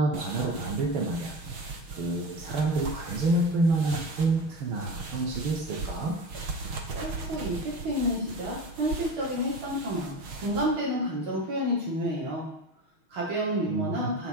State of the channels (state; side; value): late; left; 6.3 ms